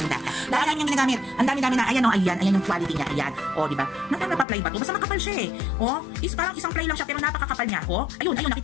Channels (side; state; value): right; drops out; at 4.5 s